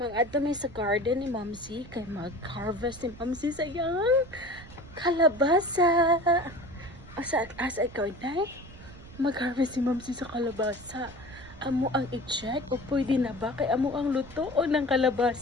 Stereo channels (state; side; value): noise; right; rumble, 17 dB below the sound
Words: Mag-adto mi sa garden ni Mamsi kay mag-harvest ni Mamsi sa iyang kalabasa. Asa ikaw nay? Mag-harvest ni Mamsi sa kalabasa. Amo ang i-check o pwede na ba kay amo ang lutoon ng